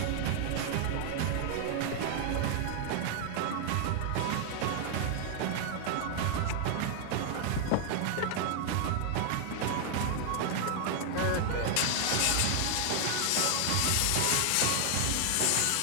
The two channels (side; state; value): both; different; correlation 0.00